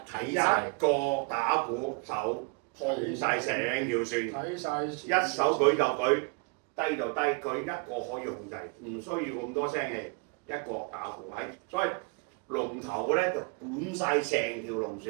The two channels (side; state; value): left; quieter; 33.8 dB